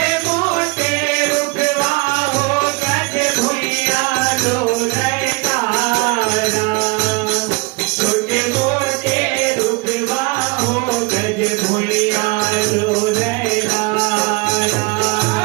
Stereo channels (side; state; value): left; quieter; 27.2 dB